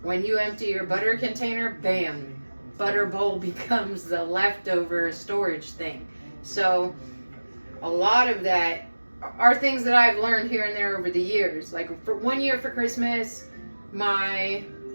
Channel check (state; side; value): inverted; both; correlation -1.00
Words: when you empty your butter container, bam, butter bowl becomes the leftover storage thing. So a lot of that are things that I've learned here and there over the years. Like for one year for Christmas, my